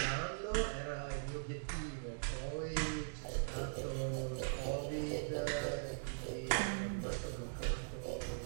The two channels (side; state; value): left; silent; digital silence